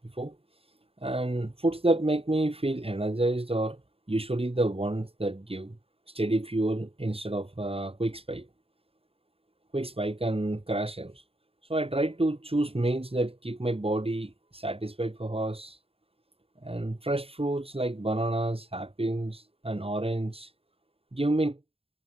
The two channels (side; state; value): left; late; 0.28 ms